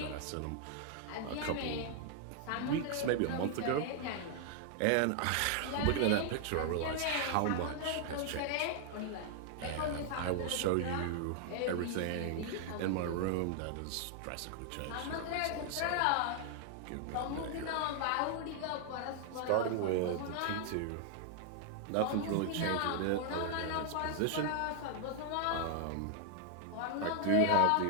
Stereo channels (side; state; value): both; different; correlation 0.00